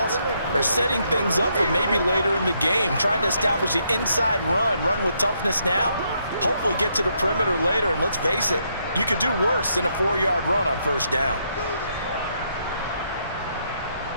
are setting things up for maybe later in the game, trying to establish the inside run with toughness now, hopefully get to the perimeter later, and let's face it, you could do worse than a 4-yard run on 1st down.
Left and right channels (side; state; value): both; inverted; correlation -0.75